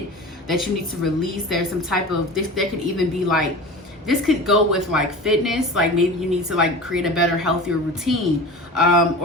that you need to release. There's some type of this. There could even be like, this could go with like fitness. Like, maybe you need to like create a better, healthier routine,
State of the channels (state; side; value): normal; both; correlation 0.34